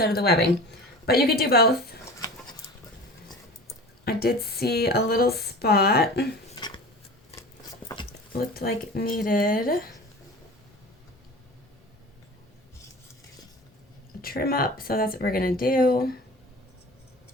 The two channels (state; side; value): normal; both; correlation 0.37